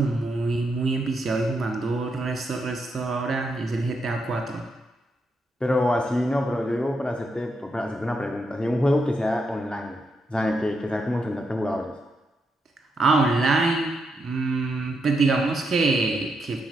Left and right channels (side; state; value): both; normal; correlation 0.81